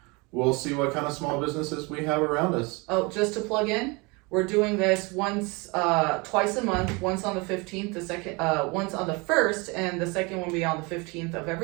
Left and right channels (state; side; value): quieter; left; 27.5 dB